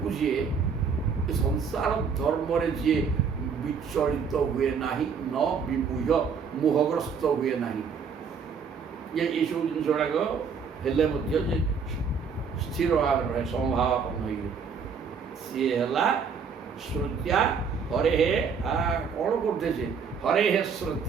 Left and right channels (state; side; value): quieter; left; 6.0 dB